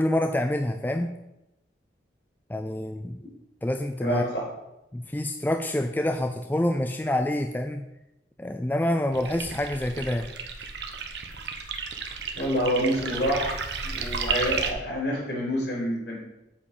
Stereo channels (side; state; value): both; normal; correlation 0.60